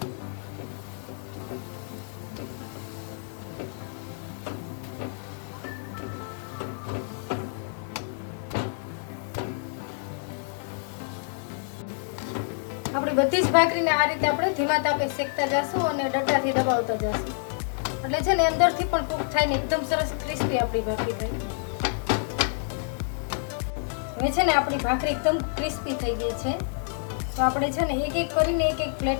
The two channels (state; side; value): silent; right; digital silence